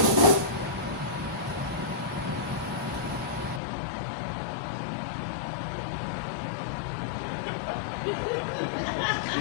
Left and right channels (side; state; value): right; drops out; at 3.6 s